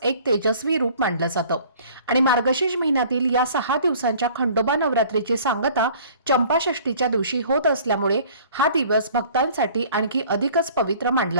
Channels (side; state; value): both; inverted; correlation -0.50